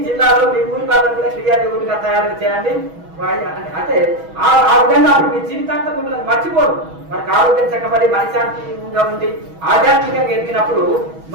జిల్లాలో మీ ఊరి వాళ్ళని కూడా క్రియాయోగులుగా తయారు చేయండి. అంటే ఆ విధంగా మీ జీవితాంతం మిమ్మల్ని మర్చిపోరు. మనకు ఆరోగ్యం చక్కబడి మనశాంతిగా ఉండి ఆధ్యాత్మికంగా ఎదిగినప్పుడు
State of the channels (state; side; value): late; left; 6.2 ms